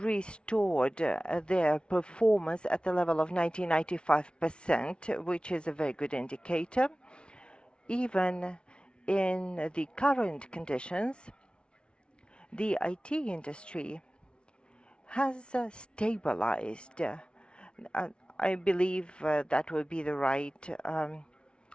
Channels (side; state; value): right; late; 0.057 ms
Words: their performance at the level of 95%, which is a very good indicator. Even in the current conditions, the IT industry has stabilized. I believe that would be the right